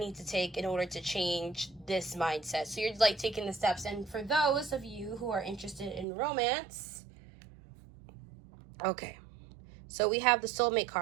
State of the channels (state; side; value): drops out; left; at 6.1 s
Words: to take in order to change this mindset. So you're like taking the steps. And for those of you who are interested in romance, okay. So we have the soulmate